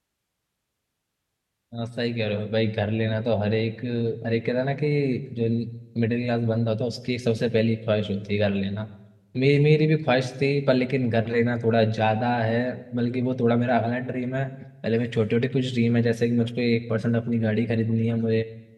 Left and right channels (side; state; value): both; identical; correlation 1.00